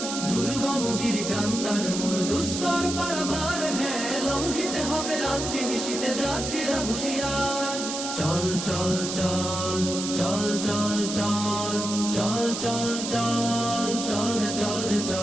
দুর্গম গিরিকান্তার মোর দুস্তর পারাবার হ্যাঁ, লঙ্ঘিতে হবে রাত্রি নিশীতে যাত্রীরা হুঁশিয়ার। চল চল চল চল চল চল চল চল চল চল রে চল রে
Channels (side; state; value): right; noise; hiss, 5 dB below the sound